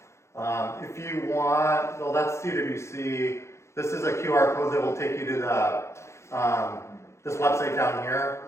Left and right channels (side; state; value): right; late; 0.13 ms